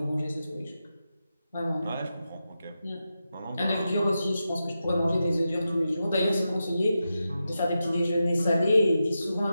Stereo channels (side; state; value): both; inverted; correlation -0.90